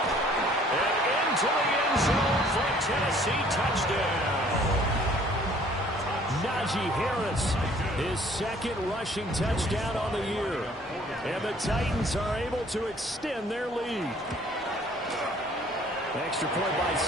And into the end zone for a Tennessee touchdown. Najee Harris, his second rushing touchdown on the year. And the Titans are able to extend their lead. Extra point by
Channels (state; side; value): normal; both; correlation 0.57